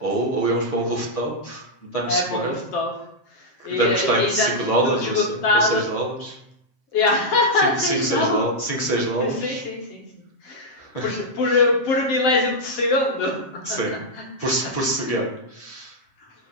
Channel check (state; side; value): late; right; 7.6 ms